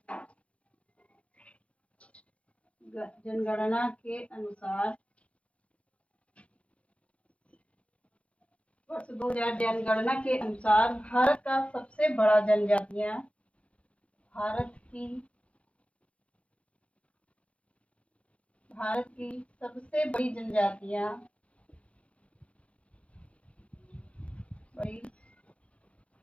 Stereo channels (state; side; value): late; right; 0.062 ms